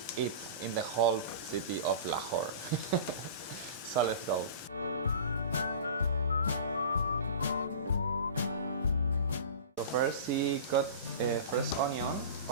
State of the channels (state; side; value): inverted; both; correlation -0.36